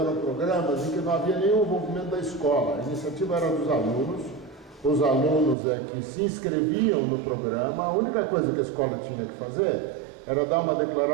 programas em que não havia nenhum envolvimento da escola. A iniciativa era dos alunos, os alunos que se inscreviam no programa. A única coisa que a escola tinha que fazer era dar uma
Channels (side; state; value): left; drops out; at 5.6 s